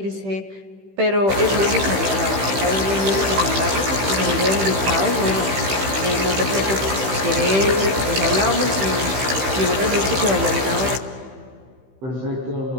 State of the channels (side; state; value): left; late; 15 ms